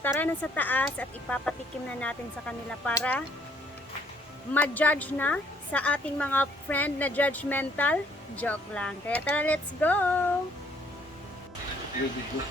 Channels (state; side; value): normal; both; correlation 0.64